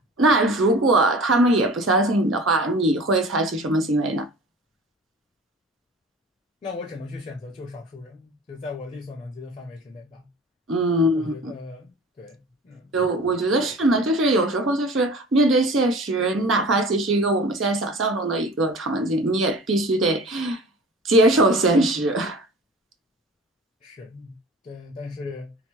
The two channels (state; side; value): normal; both; correlation 0.42